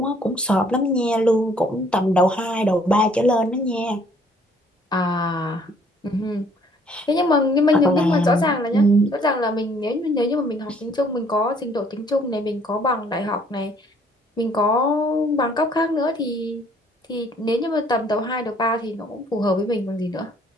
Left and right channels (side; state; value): both; normal; correlation 0.61